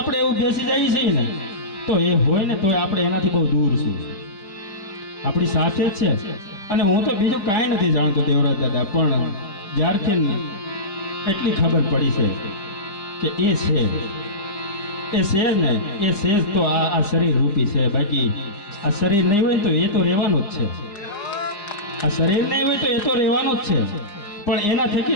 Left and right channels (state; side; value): late; right; 4.9 ms